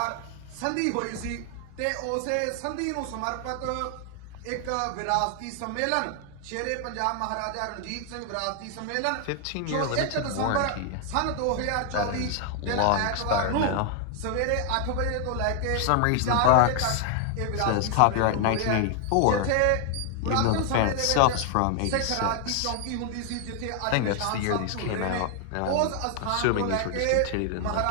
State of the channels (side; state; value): both; different; correlation 0.00